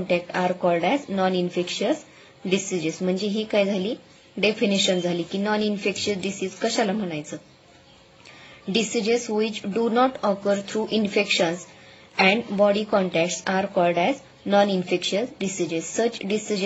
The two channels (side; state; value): both; identical; correlation 1.00